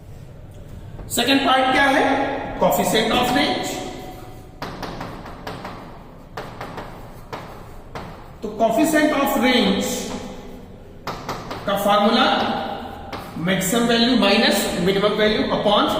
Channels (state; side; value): identical; both; correlation 1.00